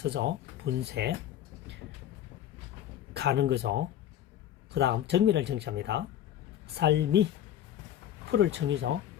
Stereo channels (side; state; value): right; quieter; 11.2 dB